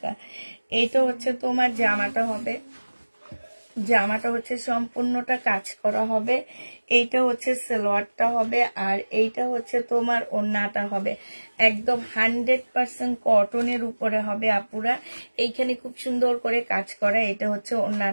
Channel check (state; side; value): inverted; both; correlation -1.00